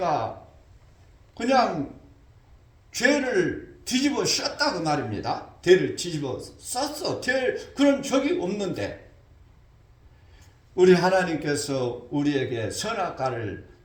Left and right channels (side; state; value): both; identical; correlation 1.00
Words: 그냥 죄를 뒤집어 씌웠다, 그 말입니다. 죄를 뒤집어 썼어. 그런 적이 없는데, 우리 하나님께서 우리에게 선악과를